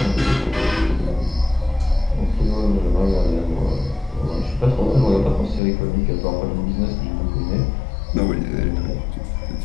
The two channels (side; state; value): right; drops out; at 5.6 s